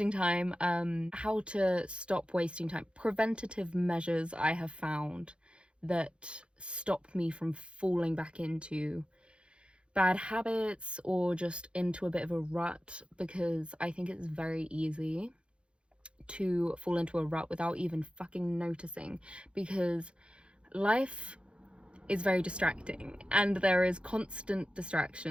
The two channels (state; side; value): late; left; 0.057 ms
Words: time, how to stop wasting time. Preventative measures I have found that stop me from falling back into bad habits or just into a bit of a rut, because I think it's very easy to fall into a rut without even fucking noticing, because life is very distracting and there is constant